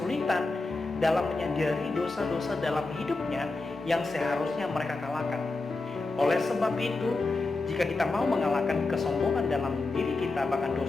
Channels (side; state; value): right; quieter; 3.4 dB